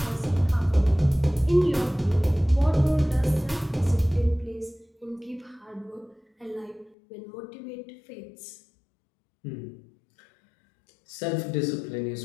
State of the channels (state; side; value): drops out; right; at 7.0 s